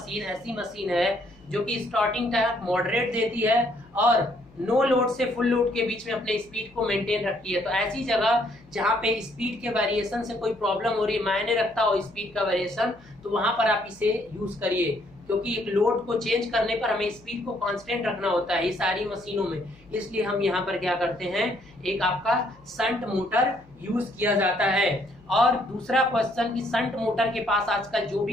ऐसी मशीन है जो कि स्टार्टिंग टाइम मॉडरेट देती है और नो लोड से फुल लोड के बीच में अपने स्पीड को मेंटेन रखती है। तो ऐसी जगह जहाँ पे स्पीड के वेरिएशन से कोई प्रॉब्लम हो रही है, मायने रखता हो स्पीड का वेरिएशन, तो वहां पर आप इसे यूज करिए, क्योंकि एक लोड को चेंज करने पर हमें स्पीड को कांस्टेंट रखना होता है ये सारी मशीनों में, इसलिए हम यहाँ पर क्या करते हैं, एक आपका शंट मोटर यूज किया जाता है। और दूसरा क्वेश्चन कि शंट मोटर के पास आजकल जो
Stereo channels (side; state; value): left; noise; hum, 27 dB below the sound